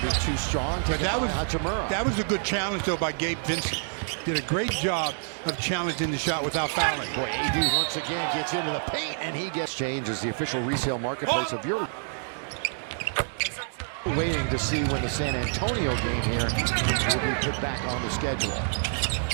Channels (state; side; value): silent; left; digital silence